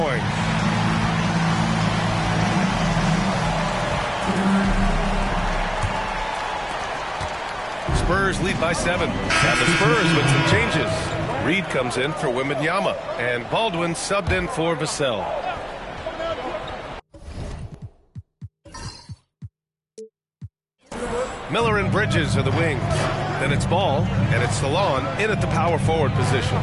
Spurs lead by 7. And the Spurs with some changes. Reed comes in for Wembanyama, and Baldwin subbed in for Vassell. Miller and Bridges are the wings. Then it's Ball, and it's Salon in at the power forward position.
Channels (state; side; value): identical; both; correlation 1.00